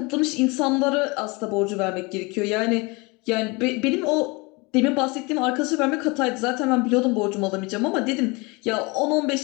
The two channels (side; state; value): right; quieter; 26.8 dB